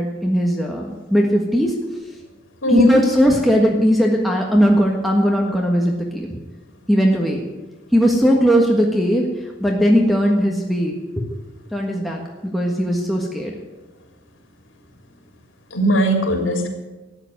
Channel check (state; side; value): normal; both; correlation 0.82